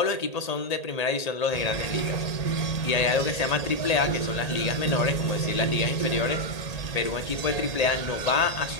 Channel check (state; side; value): late; right; 1.8 ms